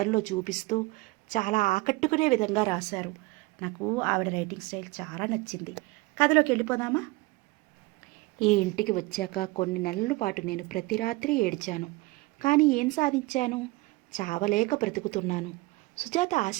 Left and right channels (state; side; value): quieter; left; 22.1 dB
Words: చూపిస్తూ చాలా ఆకట్టుకునే విధంగా రాశారు. నాకు ఆవిడ రైటింగ్ స్టైల్ చాలా నచ్చింది. కథలోకి వెళ్ళిపోదామా? ఈ ఇంటికి వచ్చాక కొన్ని నెలల పాటు నేను ప్రతి రాత్రి ఏడ్చాను. కానీ ఏం సాధించాను? చావలేక బ్రతుకుతున్నాను. సుజాత